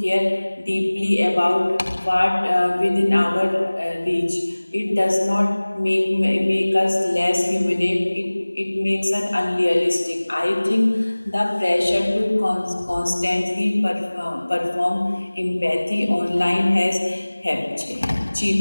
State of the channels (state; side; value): inverted; both; correlation -1.00